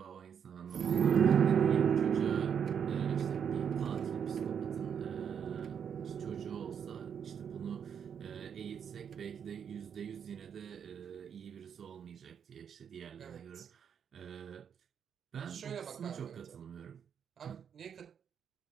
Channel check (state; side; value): quieter; left; 7.7 dB